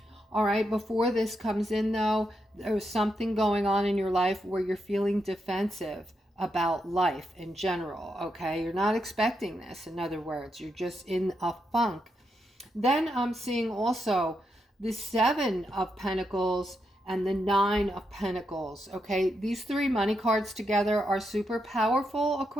All right, before this comes in though, there's something going on in your life where you're feeling defensive about life in general, okay? You're not expecting this, in other words. You're just in a funk. Then I'm seeing also the 7 of Pentacles and the 9 of Pentacles, okay? These 3 money cards together are super powerful,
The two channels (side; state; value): both; normal; correlation 0.83